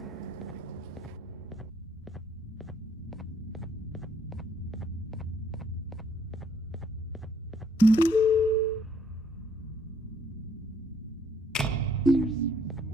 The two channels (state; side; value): normal; both; correlation 0.66